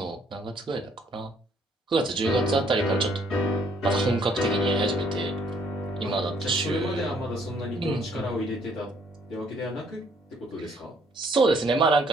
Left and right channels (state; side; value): normal; both; correlation 0.65